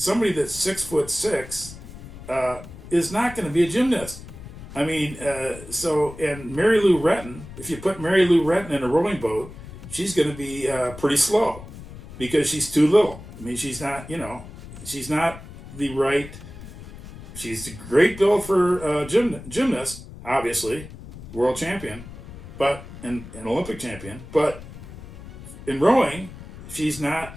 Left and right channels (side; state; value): left; noise; rumble, 15 dB below the sound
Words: that's 6'6" is not going to be a gymnast. I mean, and Mary Lou Retton, if you put Mary Lou Retton in a rowing boat, she's going to be pretty slow because she's too little. I mean, she's not the right, she's a great build for gymnast, obviously, world champion, but an Olympic champion, but in rowing, she's